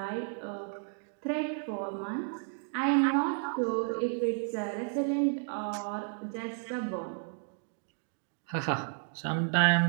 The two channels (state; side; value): silent; left; 56 dB below the other